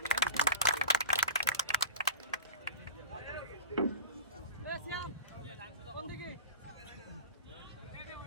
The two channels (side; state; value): both; inverted; correlation -0.33